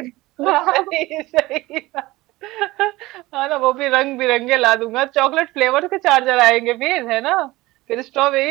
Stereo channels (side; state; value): left; quieter; 19.5 dB